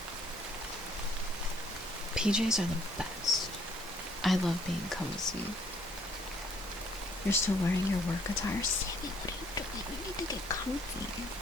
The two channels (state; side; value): normal; both; correlation 0.63